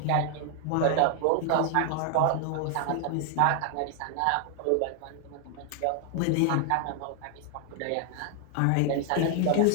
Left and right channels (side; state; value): both; different; correlation 0.00